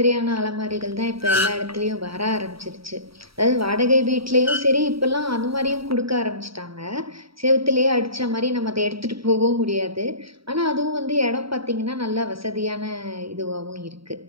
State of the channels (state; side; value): late; left; 0.75 ms